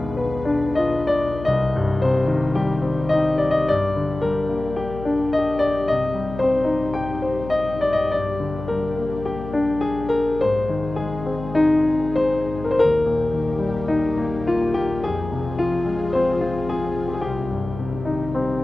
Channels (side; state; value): left; noise; hum, 11 dB below the sound